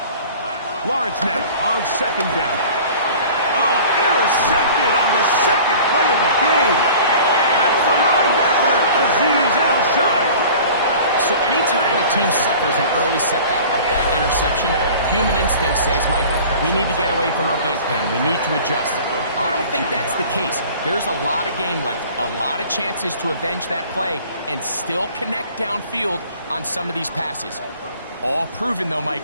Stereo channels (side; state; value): both; inverted; correlation -0.44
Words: Lawrence now on second down. Oh, intercepted on the second play of the game. That's the linebacker, Azeez Al-Shire. So anytime a team suffers an early setback like that interception, human instinct says, Mike, we need to get away from our game plan. We need to adjust. I don't think that's the case. There's a lot of game left, a lot of chances to avenge that play and still connect downfield on some of these passes. All proven, though,